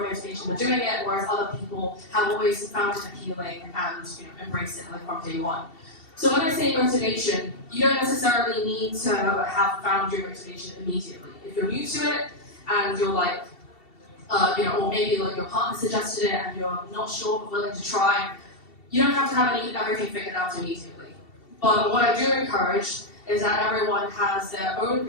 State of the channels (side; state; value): right; late; 2.7 ms